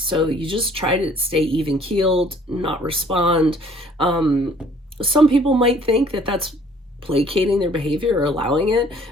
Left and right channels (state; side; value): normal; both; correlation 0.57